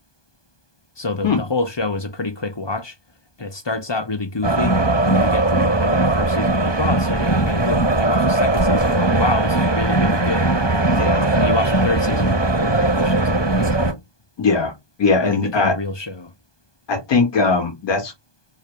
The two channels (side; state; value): right; late; 1.2 ms